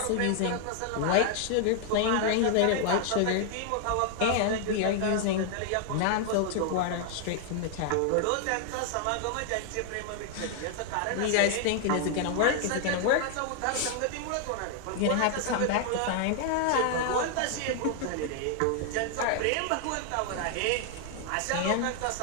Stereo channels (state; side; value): different; both; correlation 0.00